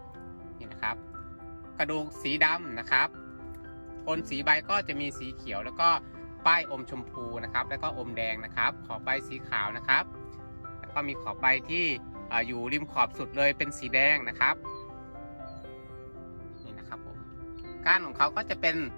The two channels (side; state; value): both; inverted; correlation -1.00